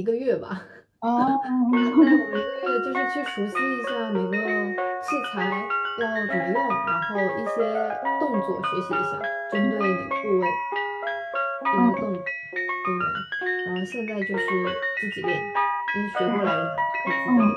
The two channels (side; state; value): both; identical; correlation 1.00